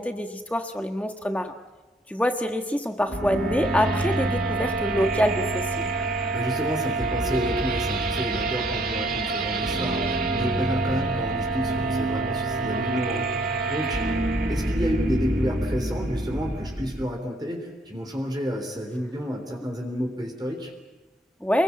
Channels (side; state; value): both; normal; correlation 0.66